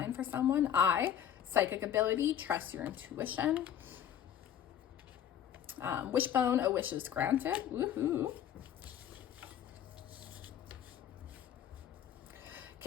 for someone. Psychic ability, trust your intuition. Wishbone, a wish is granted. Woohoo.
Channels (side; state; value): right; quieter; 9.8 dB